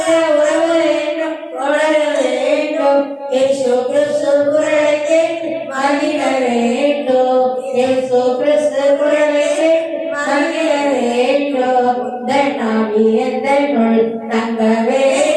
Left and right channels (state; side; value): identical; both; correlation 1.00